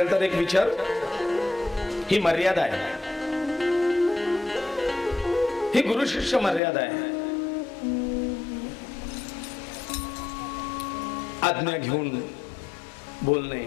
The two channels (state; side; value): drops out; right; at 6.6 s